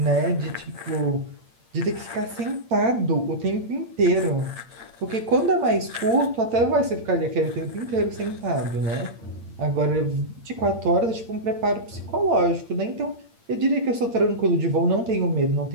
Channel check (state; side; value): late; left; 8.7 ms